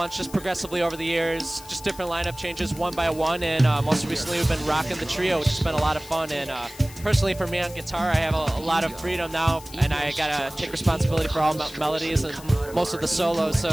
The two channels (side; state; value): left; noise; hiss, 18 dB below the sound